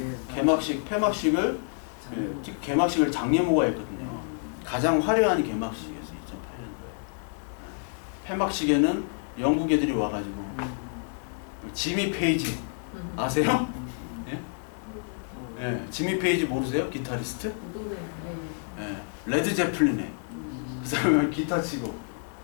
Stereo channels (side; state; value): right; silent; 59 dB below the other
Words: 폐막식을 개막식을 장례모가 했거든요. 가장 화려한 개막식이었어요. 2008년도에. 폐막식에는 영국 애들이 와가지고 지미 페이지 아세요? 예? 예, 지미 페이지 모르세요? 기타리스트? 예, 레드 제플린에 그 사람이 기타 치고.